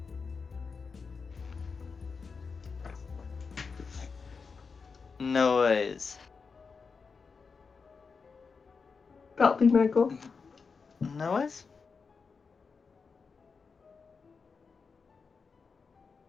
No worries. That'll be my go. No worries.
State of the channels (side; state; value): right; quieter; 5.1 dB